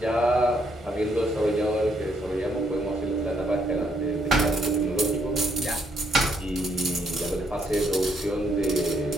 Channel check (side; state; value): both; normal; correlation 0.71